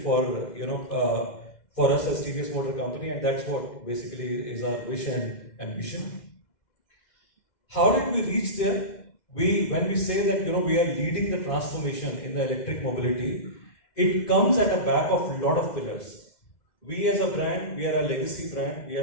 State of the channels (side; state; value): right; late; 2.0 ms